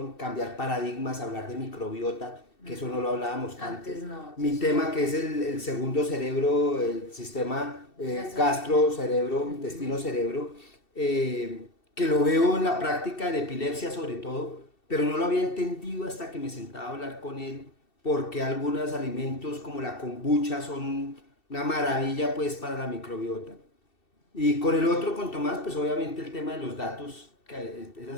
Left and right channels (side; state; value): right; late; 2.7 ms